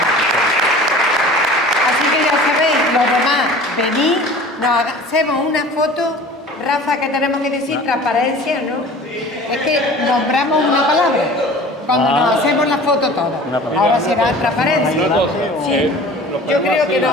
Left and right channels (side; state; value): both; normal; correlation 0.43